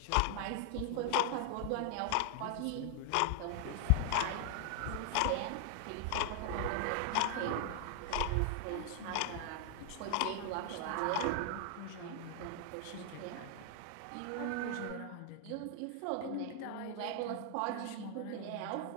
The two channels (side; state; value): both; different; correlation 0.00